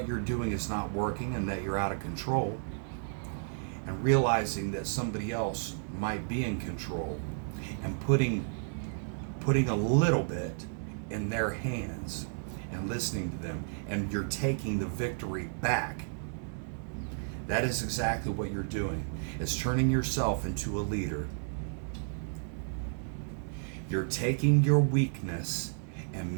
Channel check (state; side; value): silent; left; 56 dB below the other